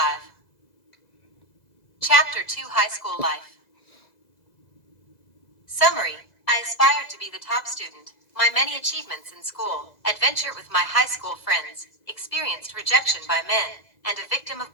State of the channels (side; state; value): right; late; 2.0 ms